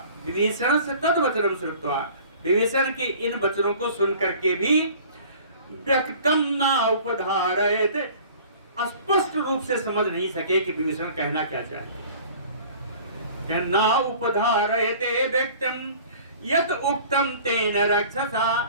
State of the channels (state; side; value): inverted; both; correlation -0.47